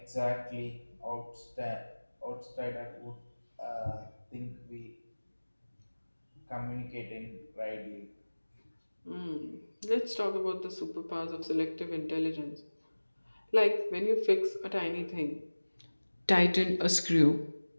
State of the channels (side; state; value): both; inverted; correlation -1.00